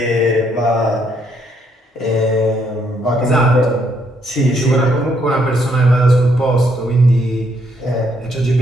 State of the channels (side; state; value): both; normal; correlation 0.72